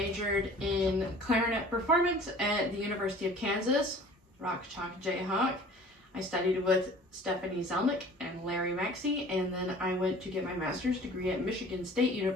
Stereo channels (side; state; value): both; normal; correlation 0.47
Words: in clarinet performance at the University of Kansas, Rock Chalk Jayhawk. I studied with Stephanie Zelnick and Larry Maxey, and then I went to get my master's degree at Michigan State